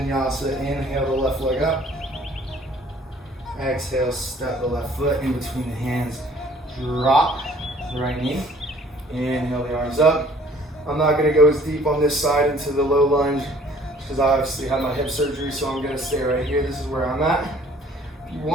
Inhale the left leg up. Exhale, step the left foot in between the hands. Drop the right knee. Inhale the arms up. I'm not gonna go as deep on this side into the low lunge because I obviously had my hip surgery, so I'm gonna stay right here. This is where I'm at. If you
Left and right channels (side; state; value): both; normal; correlation 0.55